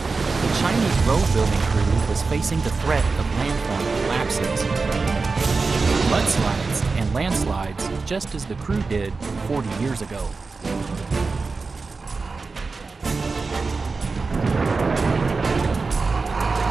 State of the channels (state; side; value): quieter; left; 4.2 dB